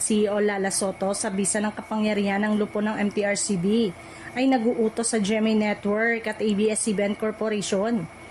CEO Lala Soto sa bisa ng kapangyarihan ng lupo ng MTRCB ay naguutos sa GMA Network at ABS-CBN Corporation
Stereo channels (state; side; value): identical; both; correlation 1.00